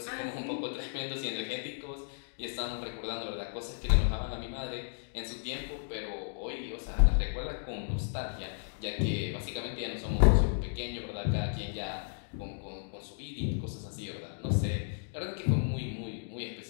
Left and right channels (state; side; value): silent; right; digital silence